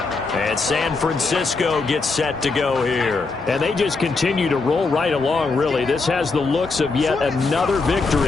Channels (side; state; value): right; quieter; 4.0 dB